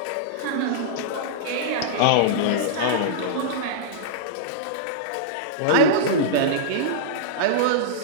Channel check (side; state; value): both; different; correlation -0.03